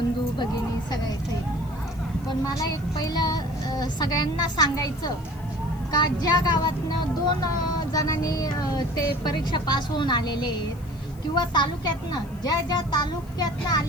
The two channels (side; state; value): left; noise; hiss, 26 dB below the sound